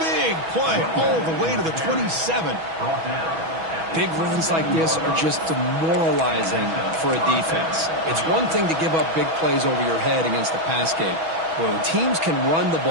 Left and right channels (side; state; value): left; late; 6.2 ms